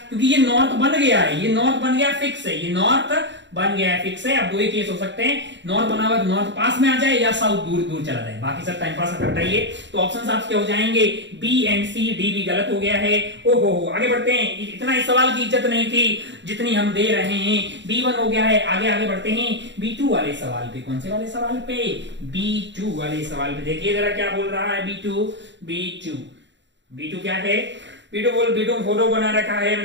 क्योंकि ये नॉर्थ बन गया है, ये नॉर्थ बन गया फिक्स है, ये नॉर्थ बन गया है फिक्स है। अब दो ही केस हो सकते हैं, नॉर्थ बना हुआ तो नॉर्थ पास में आ जाए या साउथ दूर दूर चला जाए, बाकी सब टाइम पास हटाइए। तो ऑप्शन आपके हो जाएंगे बी एंड सी, डी भी गलत हो गया है। ओहो, आगे बढ़ते हैं। इतना इस सवाल की इज्जत नहीं थी जितनी हम दे रहे हैं। B1 हो गया है, आगे बढ़ते हैं B2 वाले सवाल पे। कौन से वाले सवाल पे, B2 वाले सवाल पे। देखिए जरा क्या बोल रहा है B2 क्या है, B2 फोटो बना रखा है।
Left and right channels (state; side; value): late; left; 0.53 ms